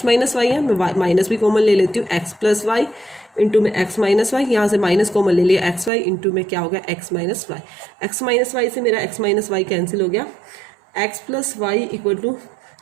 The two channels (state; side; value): drops out; left; at 5.9 s